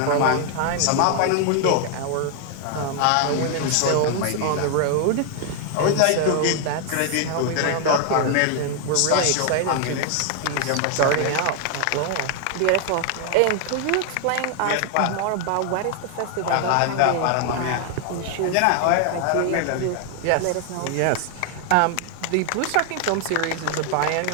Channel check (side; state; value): both; different; correlation 0.00